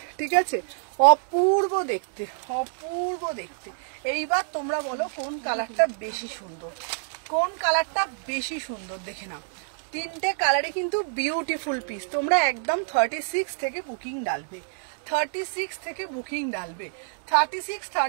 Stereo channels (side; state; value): left; silent; digital silence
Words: ঠিক আছে, অপূর্ব দেখতে, অপূর্ব দেখতে। এইবার তোমরা বলো কোন কালারটা বেশি সুন্দর, কোন কালারটা বেশি সুন্দর দেখে নাও। তিনটে কালারে কিন্তু বিউটিফুল পিস। তোমরা একদম 36 থেকে বুকিং ডালবে, 36 থেকে বুকিং ডালবে, 36,